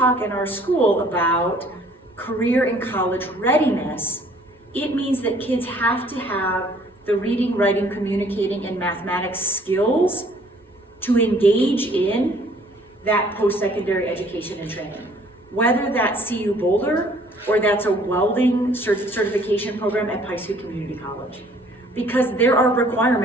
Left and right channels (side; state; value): both; normal; correlation 0.58